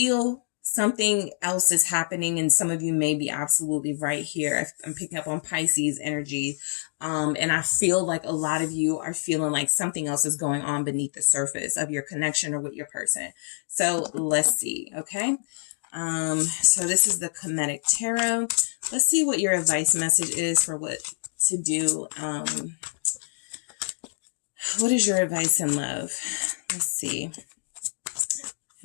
something else is happening, and some of you may be absolutely right here. I'm picking up on Pisces energy, and I feel like a lot of you are feeling like something else is going on beneath the surface of your connection or with your person. So let's see, okay? So this is the Kemetic Tarot. Let's see what your advice message is for what to do. What is your advice in love? Let's see.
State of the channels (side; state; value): right; silent; digital silence